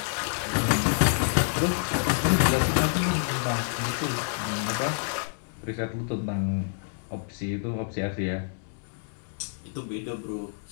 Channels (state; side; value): silent; right; digital silence